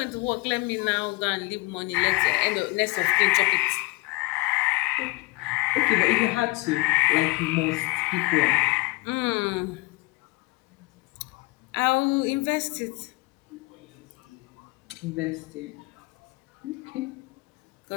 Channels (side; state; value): right; quieter; 24.5 dB